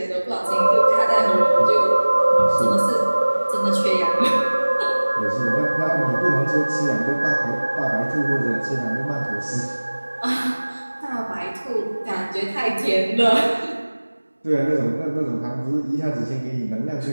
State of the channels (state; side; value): inverted; both; correlation -1.00